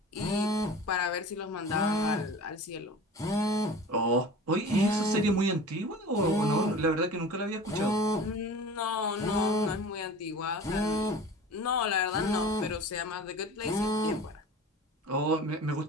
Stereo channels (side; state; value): both; normal; correlation 0.38